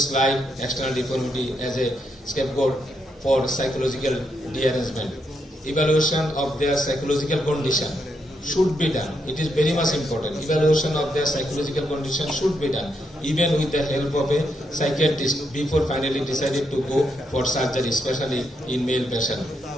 slight external deformity as a scapegoat for psychological derangement. Evaluation of their psychological condition should be done. It is very much important. Evaluation of their psychological condition should be done, even with the help of a psychiatrist before finally decided to go for surgery, especially in male patient.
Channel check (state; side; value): normal; both; correlation 0.79